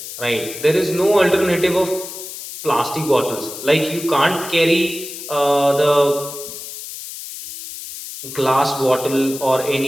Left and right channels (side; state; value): left; noise; hiss, 11 dB below the sound